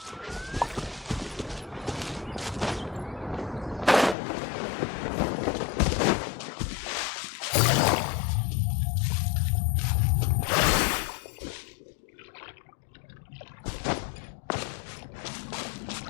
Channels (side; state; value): right; drops out; at 4.2 s